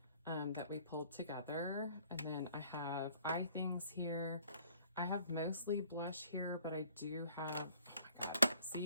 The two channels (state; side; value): inverted; both; correlation -0.56